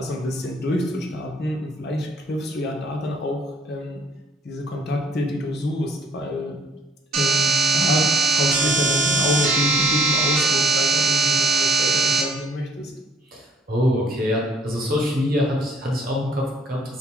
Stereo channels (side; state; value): both; normal; correlation 0.60